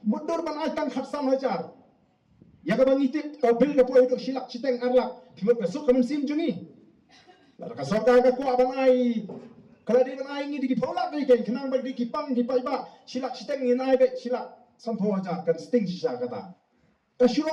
Mudur ban ai tang khatsan hajar. Ya ka bangi tip ka bil ka poi dok silak citeng arlak. Timot ka sok kamen sim jungi. La ka sok ka ku ban ai kalau dia menai ini di polak ni kan, kenang bagi kipang di paiba silak siteng ni naik be silak sampo aja kan sting sisa kata.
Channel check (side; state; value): both; identical; correlation 1.00